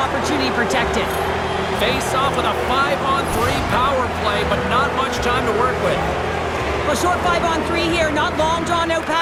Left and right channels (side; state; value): both; identical; correlation 1.00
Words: protected. Face off with a 5-on-3 power play, but not much time to work with. Well, short 5-on-3 here, not long drawn-out